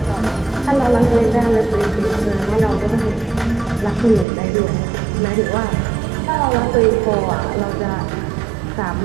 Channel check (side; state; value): left; drops out; at 4.2 s